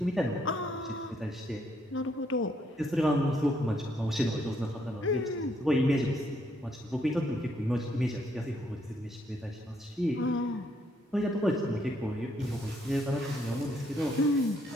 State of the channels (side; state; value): both; normal; correlation 0.72